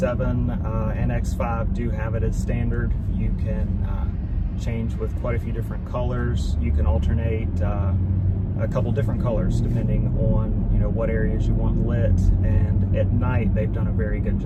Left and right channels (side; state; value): both; identical; correlation 1.00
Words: and X5 do have it as standard. You can change with quite a few different colors. You can alternate a couple different colors depending on what areas you want lit, and at night they've done a very good